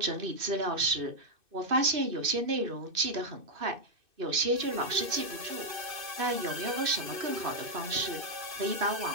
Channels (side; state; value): left; late; 2.6 ms